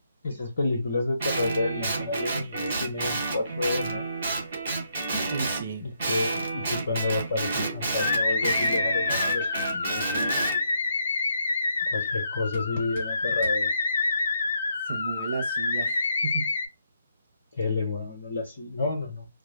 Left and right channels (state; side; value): inverted; both; correlation -0.76